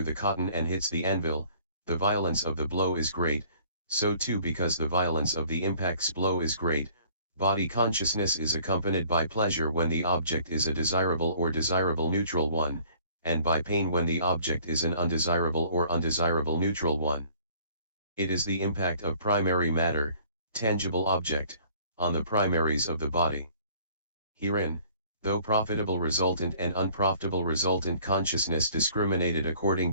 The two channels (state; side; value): inverted; both; correlation -0.55